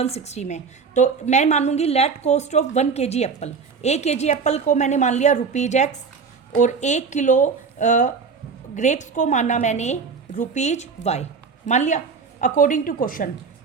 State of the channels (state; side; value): quieter; left; 5.3 dB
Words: में। तो मैं मानूंगी let cost of 1 kg apple. 1 kg apple को मैंने मान लिया ₹X और 1 किलो ग्रेप्स को माना मैंने ₹Y मान लिया अकॉर्डिंग टू क्वेश्चन।